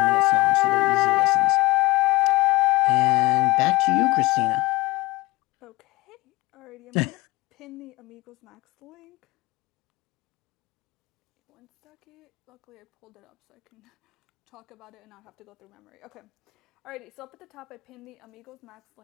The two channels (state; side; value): quieter; right; 20.7 dB